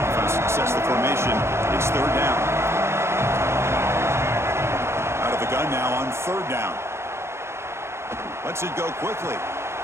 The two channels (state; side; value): late; left; 0.13 ms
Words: Offense sets the formation. It's 3rd down. Out of the gun now on 3rd down. Lets it go quickly.